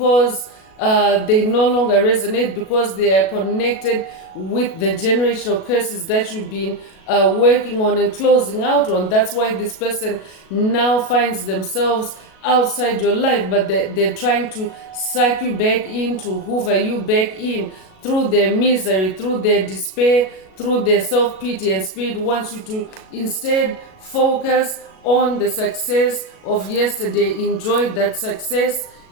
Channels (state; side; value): late; right; 37 ms